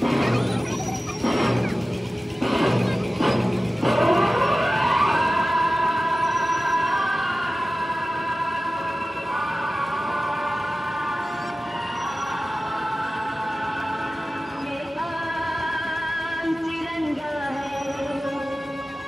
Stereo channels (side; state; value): both; normal; correlation 0.96